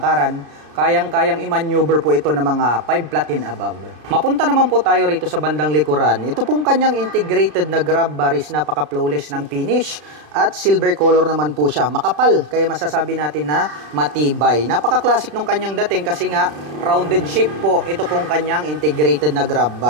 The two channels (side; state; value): left; late; 33 ms